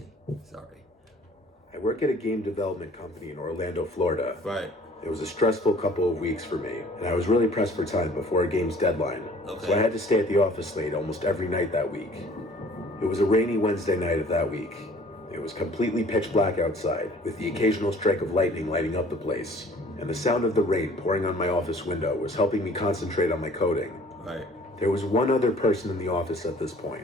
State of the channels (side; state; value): both; normal; correlation 0.52